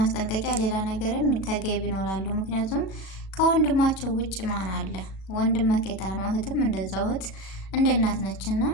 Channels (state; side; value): late; right; 36 ms